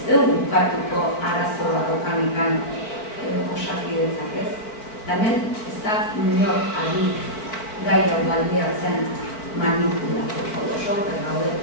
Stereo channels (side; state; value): right; late; 4.5 ms